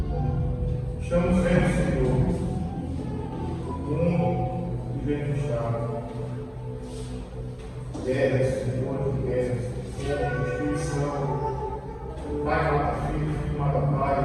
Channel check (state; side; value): identical; both; correlation 1.00